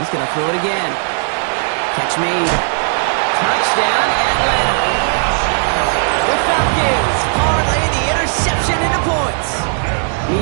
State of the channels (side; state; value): left; silent; 56 dB below the other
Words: going to throw it again. Catch made. Touchdown, Atlanta. The Falcons parlay the interception into points.